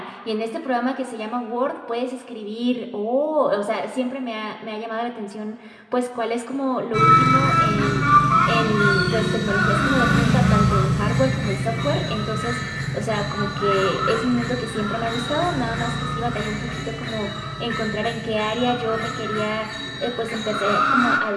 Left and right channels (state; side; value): identical; both; correlation 1.00